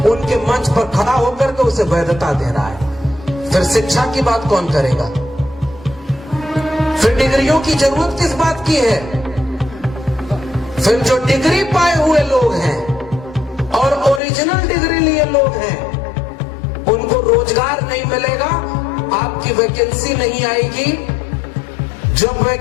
उनके मंच पर खड़ा होकर के उसे वैधता दे रहा है। फिर शिक्षा की बात कौन करेगा? फिर डिग्रियों की जरूरत किस बात की है? फिर जो डिग्री पाए हुए लोग हैं और ओरिजिनल डिग्री लिए लोग हैं, उनको रोजगार नहीं मिलेगा, आपकी वैकेंसी नहीं आएगी। जब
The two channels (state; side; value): drops out; right; at 14.2 s